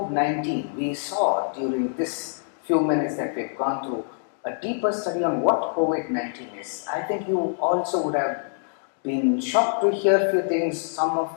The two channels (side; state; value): right; silent; digital silence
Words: we saw during this few minutes that we've gone through a deeper study on what COVID-19 is. I think you also would have been shocked to hear a few things, some